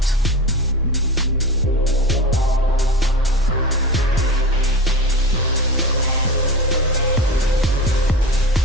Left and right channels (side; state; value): both; normal; correlation 0.29